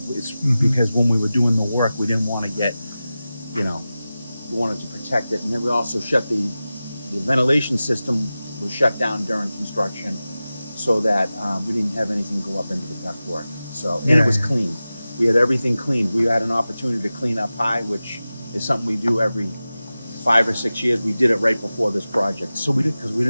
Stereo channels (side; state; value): both; inverted; correlation -0.95